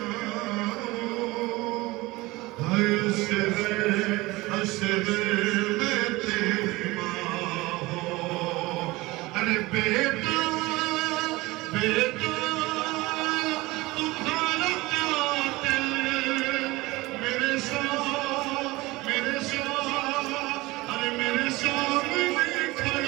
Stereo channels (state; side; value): quieter; left; 20.9 dB